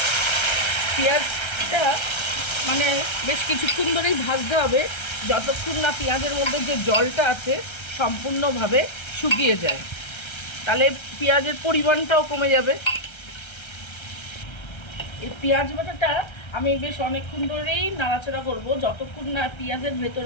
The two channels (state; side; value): late; right; 1.3 ms